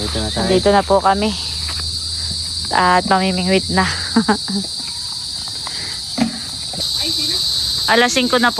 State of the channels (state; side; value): identical; both; correlation 1.00